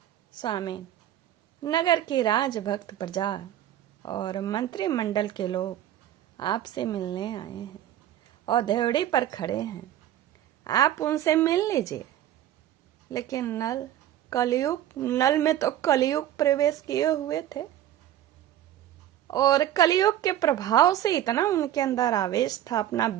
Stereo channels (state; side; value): quieter; left; 12.1 dB